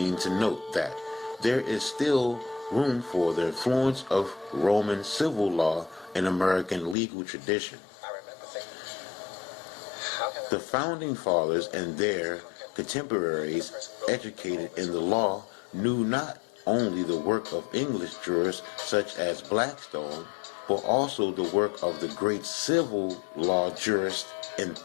to note that there is still room for the influence of Roman civil law in American legal tradition. The Founding Fathers and their contemporaries educated in the law knew not only the work of English jurists such as Blackstone, but also the work of the great civil law jurist and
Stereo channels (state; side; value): drops out; right; at 7.0 s